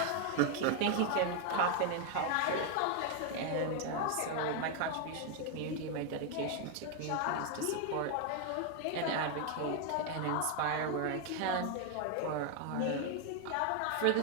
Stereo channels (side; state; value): both; different; correlation 0.01